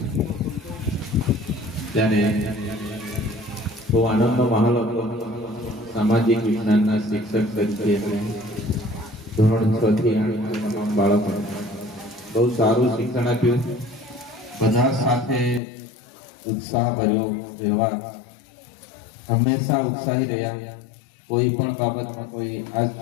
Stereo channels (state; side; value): drops out; right; at 15.6 s